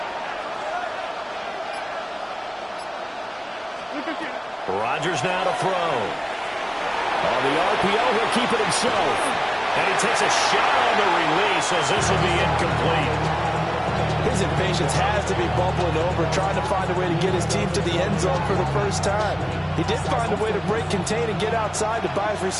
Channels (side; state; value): both; identical; correlation 1.00